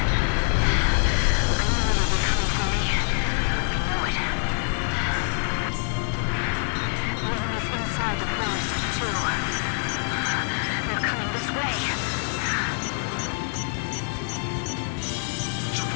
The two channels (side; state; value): right; silent; 56 dB below the other